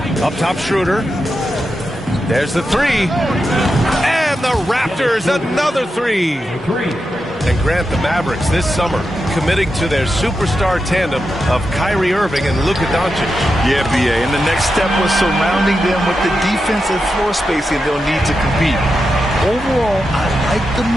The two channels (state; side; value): normal; both; correlation 0.88